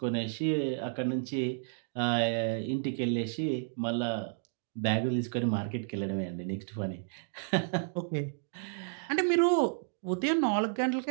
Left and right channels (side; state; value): left; silent; digital silence